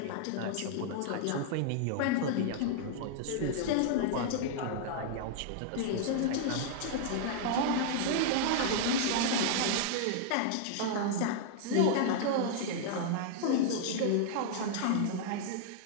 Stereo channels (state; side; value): different; both; correlation -0.01